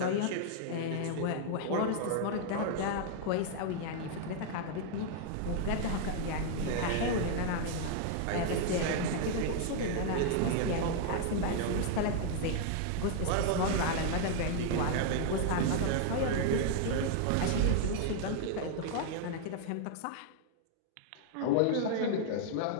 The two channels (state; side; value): different; both; correlation 0.00